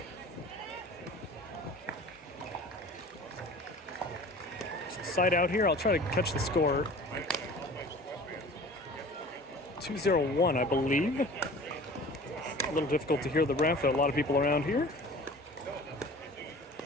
Side out here, I'll try to catch the score. 2-0-1, I believe. A little difficult to hear the ref, a lot of people around here.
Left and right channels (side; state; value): both; normal; correlation 0.43